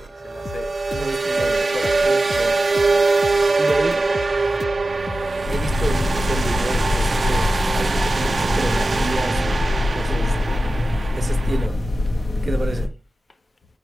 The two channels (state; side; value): normal; both; correlation 0.94